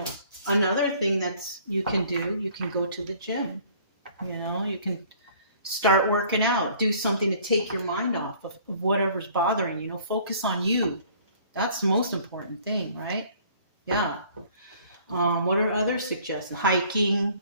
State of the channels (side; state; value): both; inverted; correlation -0.54